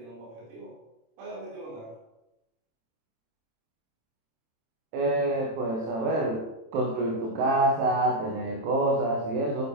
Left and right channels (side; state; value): left; late; 27 ms